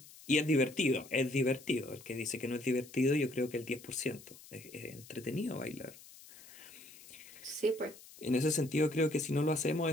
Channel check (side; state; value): left; noise; hiss, 19 dB below the sound